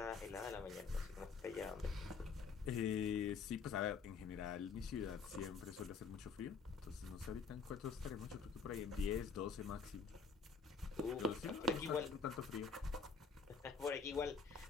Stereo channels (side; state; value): right; quieter; 5.1 dB